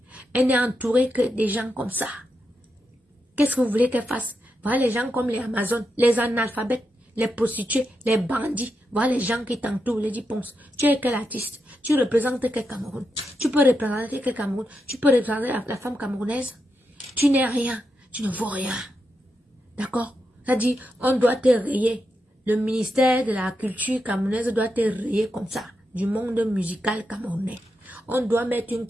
Elle n'est entourée que des gens comme ça. Qu'est-ce que vous voulez qu'elle fasse? Voilà les gens comme les Amazones, les analphabètes, les prostituées, les bandits. Voilà les gens qui t'entourent, les Ponce. Tu es quel artiste? Tu représentes quel Cameroun? Tu peux représenter quel Cameroun? Tu peux représenter la femme camerounaise? Tu n'es rien. Tu ne vaux rien. D'accord? Ça dit, on doit te rayer. Le ministère de la culture camerounaise doit te rayer comme ça. Du monde musical camerounais. On doit mettre une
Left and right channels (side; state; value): both; normal; correlation 0.86